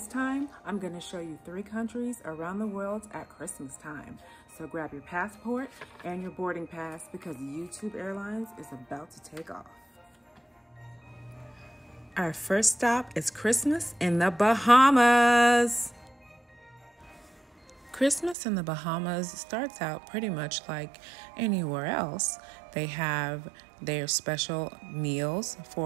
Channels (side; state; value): left; drops out; at 18.4 s